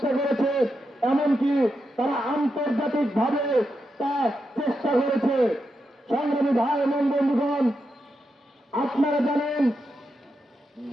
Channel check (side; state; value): both; normal; correlation 0.86